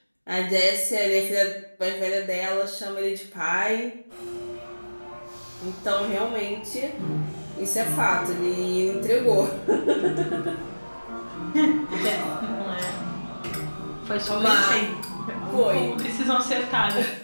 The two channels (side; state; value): both; inverted; correlation -1.00